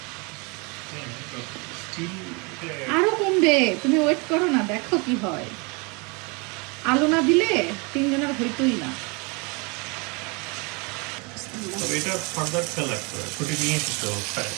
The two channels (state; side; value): quieter; left; 30.3 dB